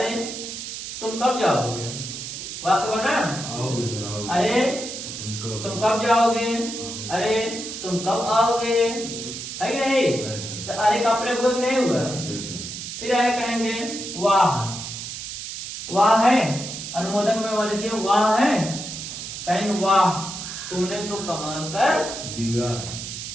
तुम कब जाओगे? वाक्य बना, अरे तुम कब जाओगे, अरे तुम कब आओगे, है कि नहीं? तो अरे का प्रयोग नहीं हुआ। फिर आगे कहेंगे वाह, वाह है, अनुमोदक में वहां देखिए वाह है, कहेंगे वाह तुमने तो कमाल कर दिया।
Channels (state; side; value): noise; right; hiss, 8 dB below the sound